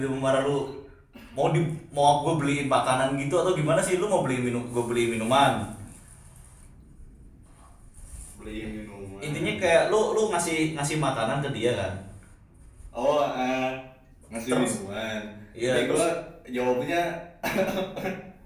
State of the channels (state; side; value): identical; both; correlation 1.00